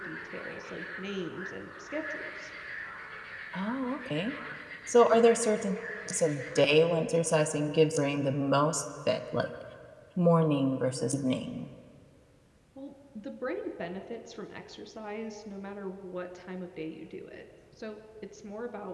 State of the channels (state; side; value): identical; both; correlation 1.00